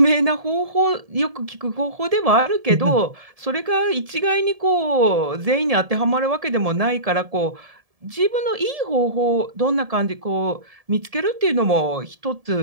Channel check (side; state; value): left; late; 1.7 ms